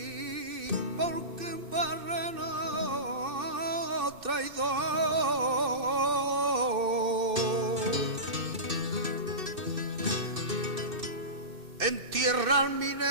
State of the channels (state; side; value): late; left; 2.6 ms